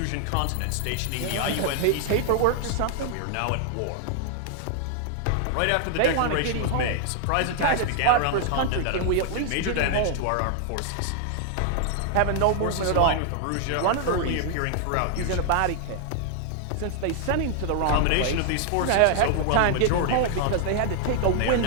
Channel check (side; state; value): both; different; correlation 0.00